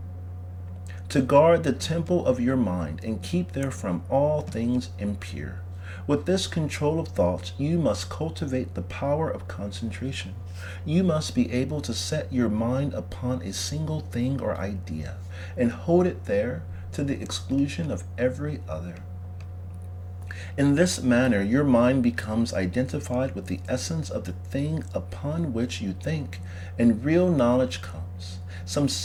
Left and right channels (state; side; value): identical; both; correlation 1.00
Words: to guard the temple of your mind and keep therefrom all things impure. With this control of thoughts, you must cultivate the power of concentration. You must be able to set your mind upon a single thing or idea and hold it there to the exclusion of every other. In this manner, your mind becomes identified with the essence of the thing upon which you think, and real knowledge comes. Some